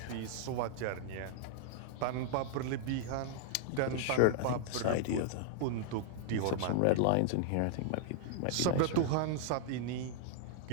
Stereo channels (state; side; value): different; both; correlation -0.01